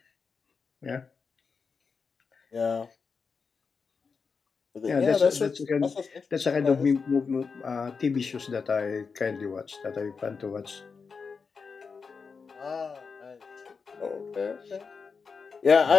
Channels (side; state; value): right; quieter; 5.3 dB